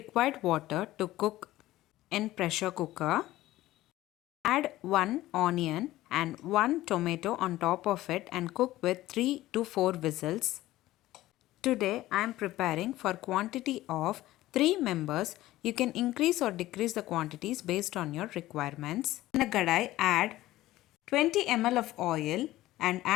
water to cook in pressure cooker, add 1 onion and 1 tomato on top of it and cook with 3 to 4 whistles. Today I am preparing for quantity of 3 members. You can increase or decrease the quantities based on your requirements. In a kadai, add 20 ml of oil and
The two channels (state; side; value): quieter; right; 16.1 dB